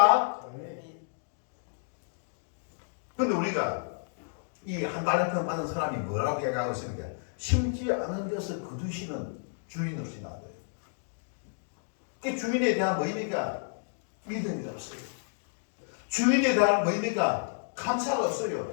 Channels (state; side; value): silent; right; digital silence